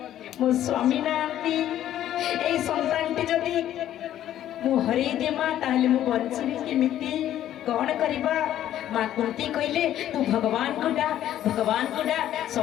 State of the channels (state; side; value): quieter; right; 11.9 dB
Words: मो स्वामी नांती ए संतानटी जदि मु हरे दे मां ताहले मु बंचबी केमिति कौन करिबा मां कुंती कहले तू भगवान को डा